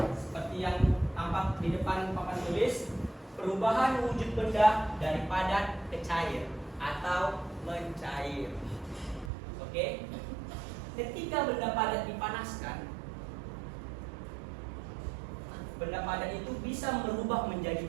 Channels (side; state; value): left; drops out; at 9.3 s